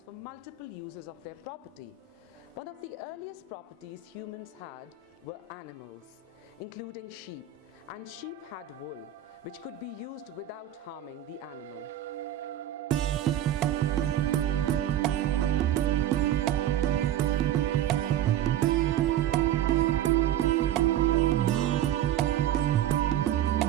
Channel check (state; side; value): quieter; left; 11.1 dB